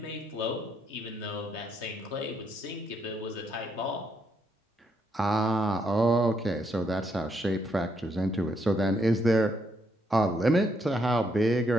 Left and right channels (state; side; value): normal; both; correlation 0.75